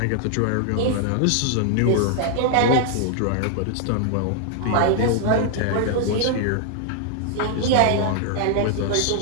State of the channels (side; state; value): both; different; correlation 0.00